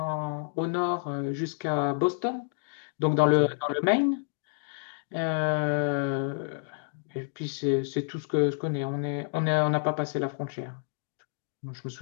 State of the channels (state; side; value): silent; right; 57 dB below the other